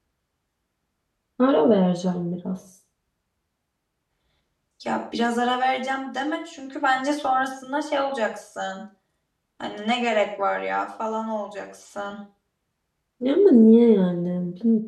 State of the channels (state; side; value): identical; both; correlation 1.00